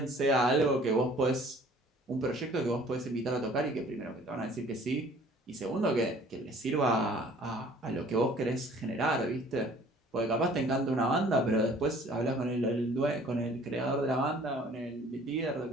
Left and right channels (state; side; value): normal; both; correlation 0.53